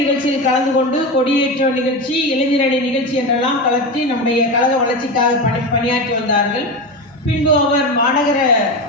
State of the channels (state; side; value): normal; both; correlation 0.20